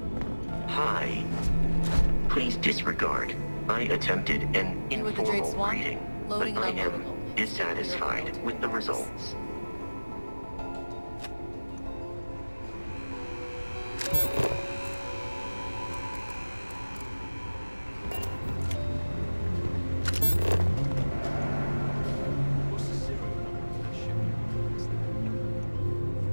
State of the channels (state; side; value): inverted; both; correlation -1.00